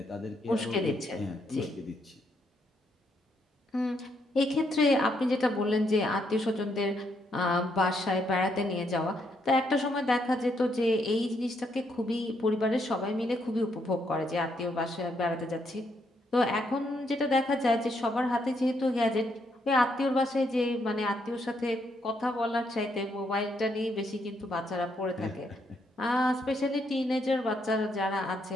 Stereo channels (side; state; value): both; normal; correlation 0.75